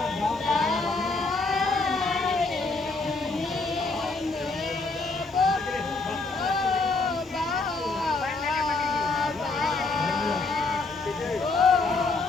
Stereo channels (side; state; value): right; quieter; 3.6 dB